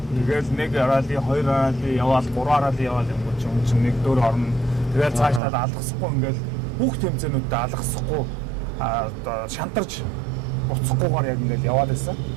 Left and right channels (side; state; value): left; drops out; at 5.4 s